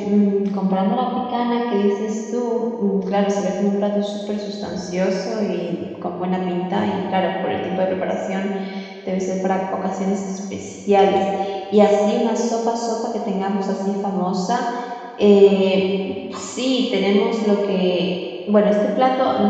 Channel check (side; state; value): both; identical; correlation 1.00